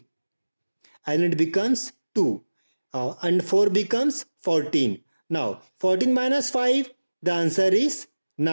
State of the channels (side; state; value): both; inverted; correlation -1.00